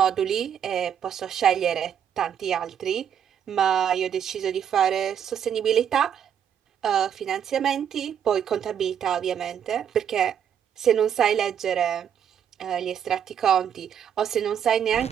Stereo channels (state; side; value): quieter; left; 8.7 dB